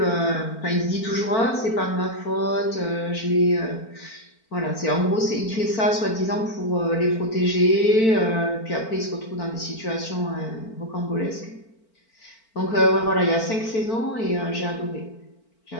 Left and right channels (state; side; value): late; right; 4.4 ms